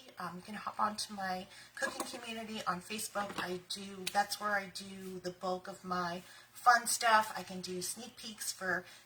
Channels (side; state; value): both; identical; correlation 1.00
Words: you can hop onto my cooking community on Facebook. That's where I do the bulk of my fun stuff. I can do sneak peeks for